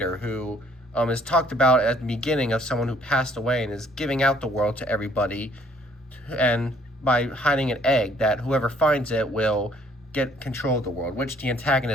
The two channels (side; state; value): both; normal; correlation 0.62